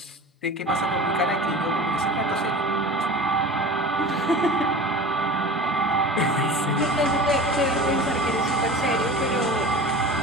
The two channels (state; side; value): normal; both; correlation 0.36